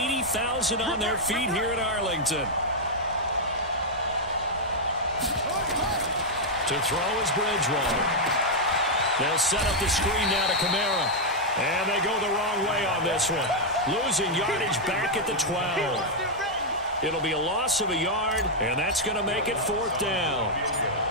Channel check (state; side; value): normal; both; correlation -0.03